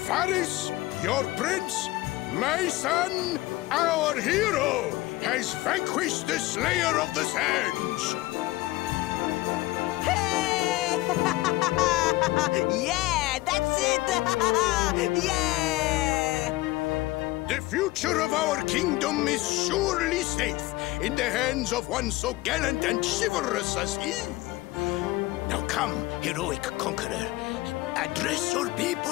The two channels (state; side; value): quieter; right; 18.9 dB